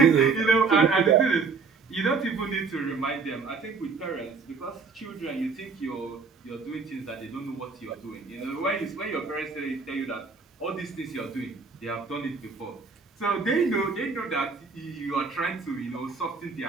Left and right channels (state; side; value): quieter; left; 4.9 dB